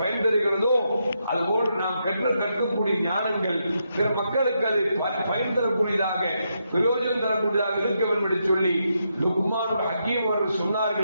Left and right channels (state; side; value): inverted; both; correlation -0.81